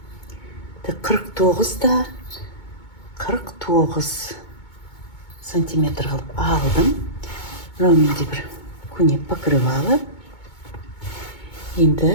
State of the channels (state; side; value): late; right; 2.2 ms